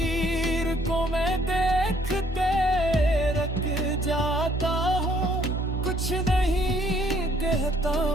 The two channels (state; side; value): normal; both; correlation 0.64